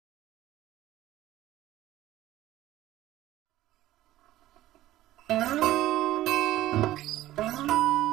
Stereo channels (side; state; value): left; quieter; 14.7 dB